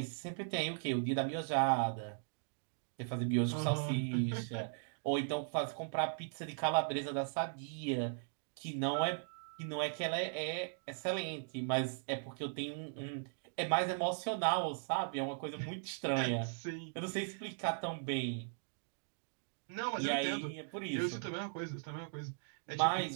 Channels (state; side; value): silent; left; digital silence